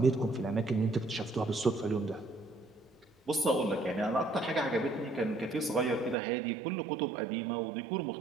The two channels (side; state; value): left; drops out; at 6.2 s